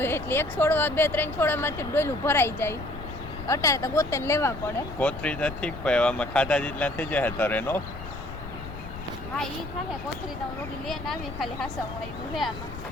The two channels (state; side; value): noise; left; rumble, 11 dB below the sound